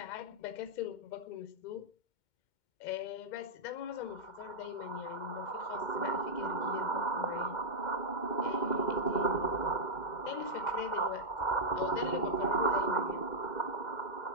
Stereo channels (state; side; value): late; right; 2.1 ms